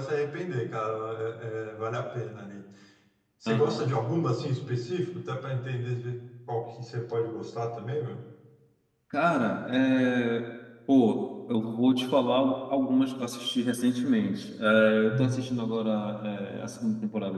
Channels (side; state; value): both; identical; correlation 1.00